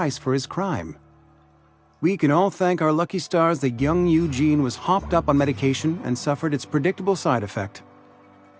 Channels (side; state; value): both; identical; correlation 1.00